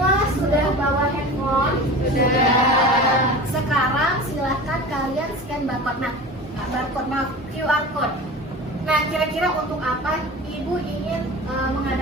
sudah bawa handphone? Sudah. Sekarang silahkan kalian scan barcode. Nah, QR code. Nah, kira-kira untuk apa Ibu ingin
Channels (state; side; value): normal; both; correlation 0.34